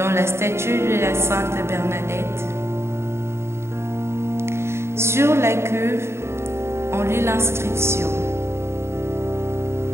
la statue de la Sainte Bernadette. Sur la cuve, on lit l'inscription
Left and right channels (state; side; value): late; left; 0.13 ms